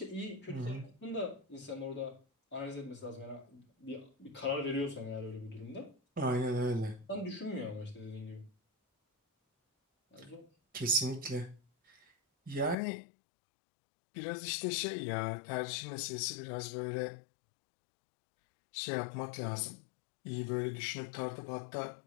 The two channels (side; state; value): right; drops out; at 12.8 s